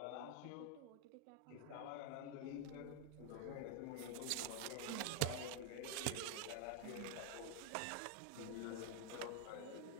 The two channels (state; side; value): different; both; correlation 0.00